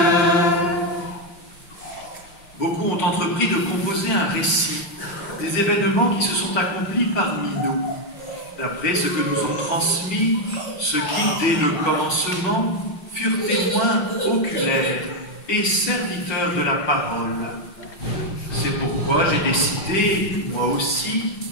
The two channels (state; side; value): late; right; 5.7 ms